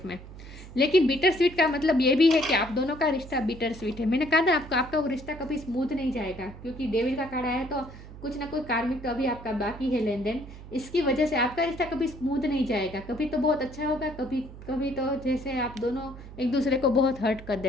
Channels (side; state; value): right; noise; hum, 15 dB below the sound